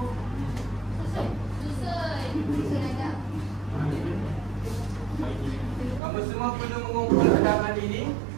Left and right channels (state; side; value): drops out; left; at 6.0 s